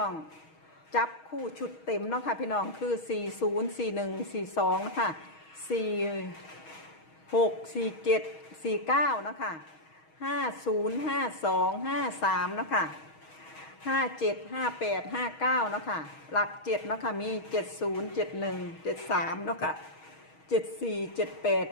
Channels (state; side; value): late; right; 6.3 ms